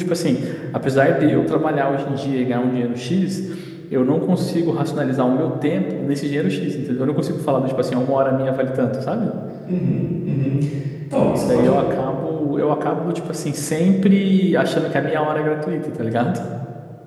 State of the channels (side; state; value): both; identical; correlation 1.00